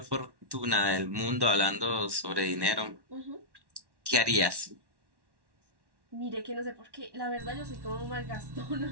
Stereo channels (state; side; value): late; left; 1.1 ms